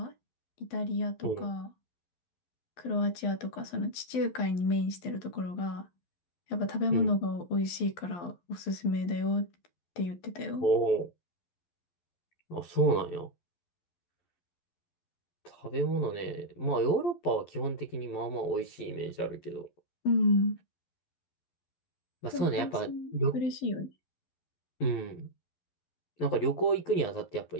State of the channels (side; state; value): right; late; 11 ms